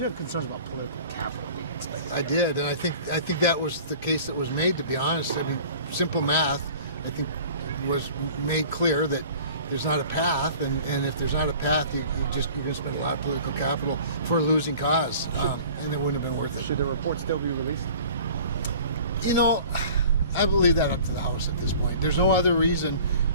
concerns about political capital being expected. I did, and I think that was the case that was made, to be honest. I mean, simple math, I think, was made clear that there's not a path, and if there's not a path, you're going to spend a lot of political capital for a losing cause, and it wouldn't have been worth it. Should the report still be released? You know, I will leave that up to the House at this point. There's no other reason,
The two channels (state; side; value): inverted; both; correlation -0.45